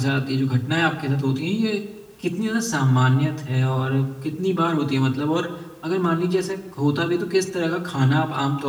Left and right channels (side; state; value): both; identical; correlation 1.00